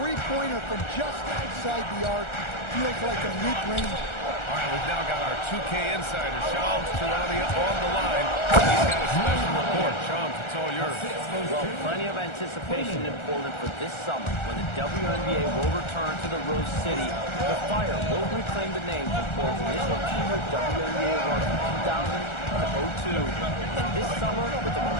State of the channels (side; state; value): right; late; 1.4 ms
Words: from just outside the arc feels like a mid-range. All right, we've now got our 2K insider, Shams Charania, on the line. He's got a special report. Shams, it's all yours. Well, plenty of anticipation in Portland for this summer when the WNBA will return to the Rose City. The Fire will reclaim the name from Portland's initial two-year WNBA run from 2000 to 02. And this summer, with the